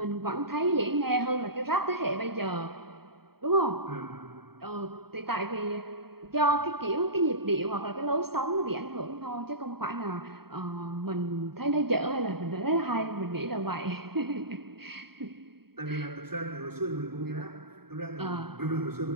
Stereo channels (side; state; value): left; late; 0.95 ms